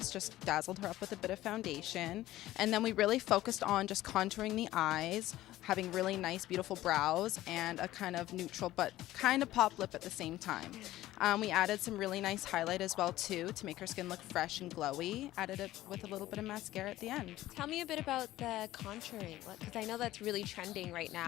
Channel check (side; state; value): right; quieter; 15.4 dB